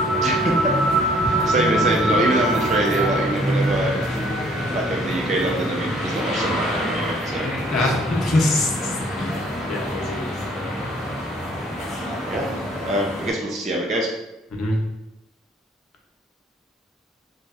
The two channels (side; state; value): both; normal; correlation 0.60